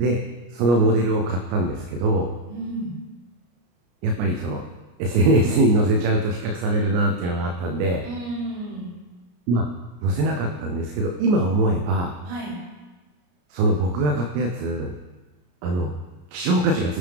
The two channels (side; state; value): left; late; 34 ms